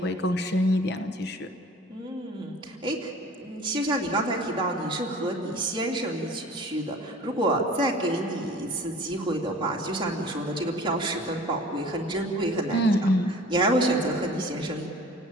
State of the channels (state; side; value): normal; both; correlation 0.45